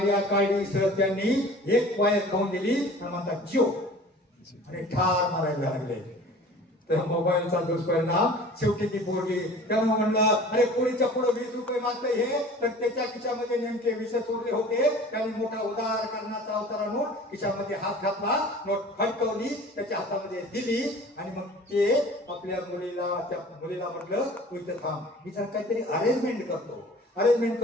काढली सर त्यांनी, एक वायर खाऊन दिली आणि म्हणतात जिओ आणि ठार मारायला लागले. तर मोबाईलचा दुष्परिणाम शेवटी ती पोरगी. त्यामुळे म्हणलं अरे पोरीच्या पुढे 20 रुपये मागतंय हे, तर त्याच्या खिशामध्ये नेमके 20 उरले होते. त्याने मोठा उदार करण्याचा अवतार आणून खिशामध्ये हात घातला, नोट फडकवली, त्याच्या हातामध्ये दिली आणि मग ते आपल्या त्या मुलीला म्हटलं तू इथं थांब, मी जर काहीतरी अरेंजमेंट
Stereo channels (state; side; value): normal; both; correlation 0.45